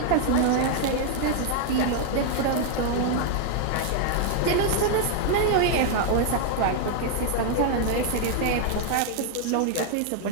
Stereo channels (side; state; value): both; different; correlation 0.00